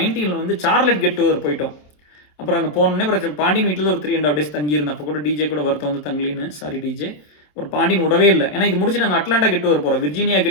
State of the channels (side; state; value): right; late; 27 ms